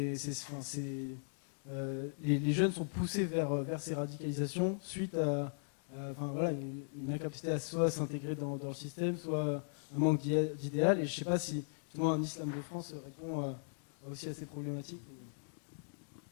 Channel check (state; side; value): silent; right; digital silence